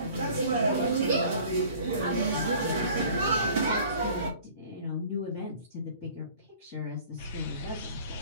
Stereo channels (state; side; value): inverted; both; correlation -0.49